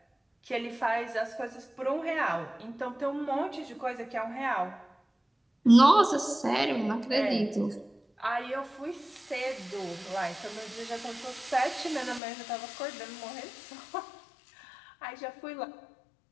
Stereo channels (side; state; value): right; drops out; at 12.2 s